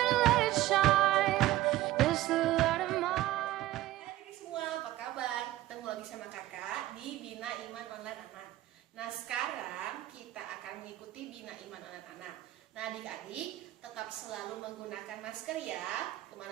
let it shine. This the light of mine. Hai semua, apa kabar? Ketemu lagi sama kakak di Bina Iman Online Anak. Nah sekarang kita akan mengikuti Bina Iman Online Anak. Nah adik-adik tetap selalu menggunakan masker ya.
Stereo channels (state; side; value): quieter; left; 15.6 dB